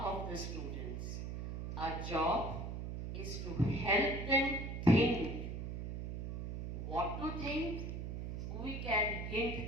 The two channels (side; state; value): right; noise; hum, 5 dB below the sound